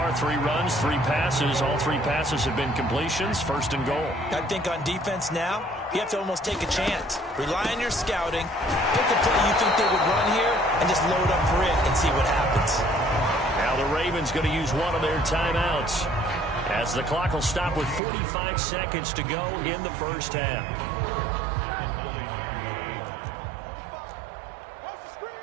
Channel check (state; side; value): drops out; left; at 18.0 s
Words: 3 runs, 3 passes. All 3 passes have been completions. First and goal. I think on defense now, you have to almost take a chance. Rely on your scouting. Pick a play you think they would run here and just load up for it and see what happens. Now the Ravens going to use one of their timeouts, as the clock will stop with 45 seconds to go in the first half.